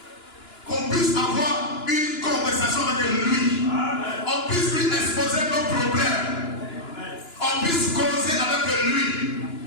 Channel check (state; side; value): late; right; 2.9 ms